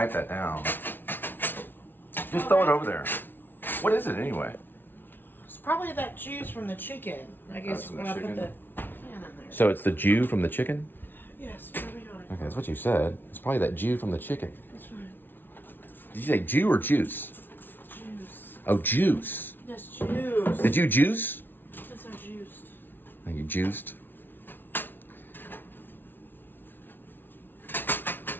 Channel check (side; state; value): right; late; 0.098 ms